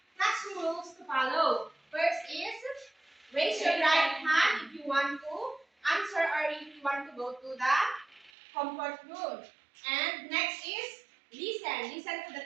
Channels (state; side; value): drops out; left; at 8.3 s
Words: classroom rules to follow. First is, raise your right hand if you want to answer or if you want to go to the comfort room. And next is, listen. Listen to the